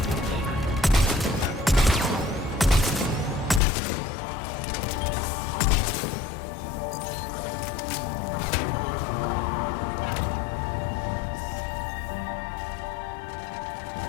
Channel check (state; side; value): drops out; right; at 3.6 s